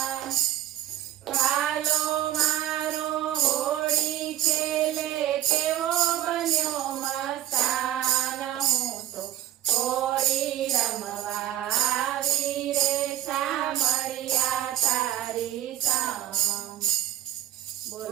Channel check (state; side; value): quieter; left; 12.5 dB